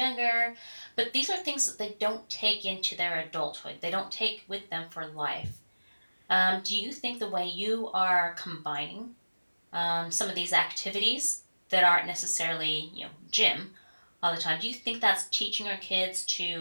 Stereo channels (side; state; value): both; inverted; correlation -1.00